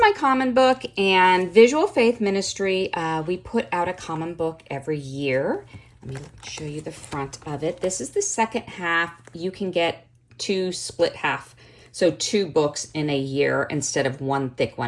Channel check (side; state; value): both; identical; correlation 1.00